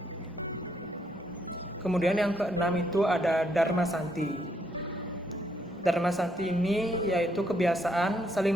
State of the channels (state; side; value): normal; both; correlation 0.74